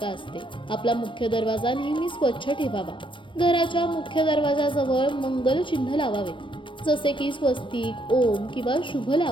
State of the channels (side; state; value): right; late; 0.24 ms